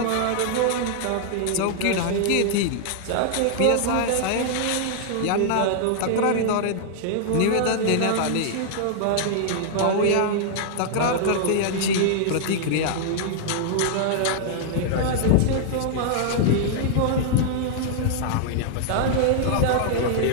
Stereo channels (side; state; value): both; different; correlation -0.01